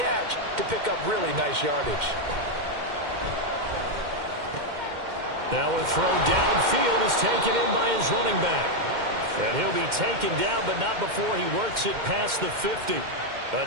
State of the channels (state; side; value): late; left; 2.1 ms